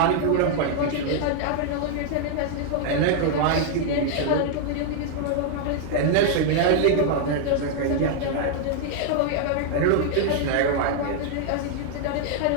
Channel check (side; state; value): both; different; correlation 0.00